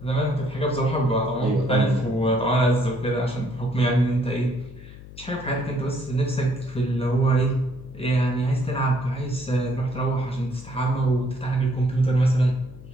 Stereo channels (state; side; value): noise; left; hum, 17 dB below the sound